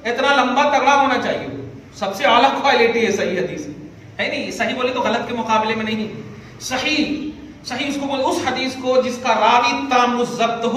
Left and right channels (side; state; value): both; identical; correlation 1.00